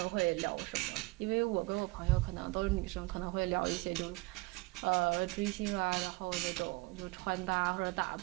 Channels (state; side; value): quieter; left; 23.7 dB